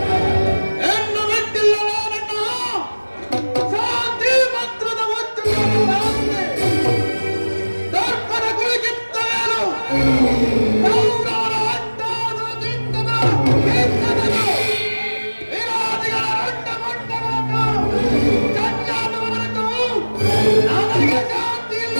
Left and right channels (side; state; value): both; inverted; correlation -1.00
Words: ಹೆಣ್ಣು ಬಿಟ್ಟಿಲ್ಲ ನನ್ನ ಶಾಂತಿ ಮಂತ್ರದ ದರ್ಪಣ ಕುಳಿಕಿತ್ತವೇನು ಕೌರವರ ಅಡ್ಡಾದ ದಿಂಡದ ಕೀರ್ತನೆಗಳು ವಿರೋಧಿಗಳ ರಂಡ ಮಂಡಗಳನ್ನು ಚಂಡಾಲವರನ್ನು ನನಗೆ ಶಾಂತಿ ಇಲ್ಲ.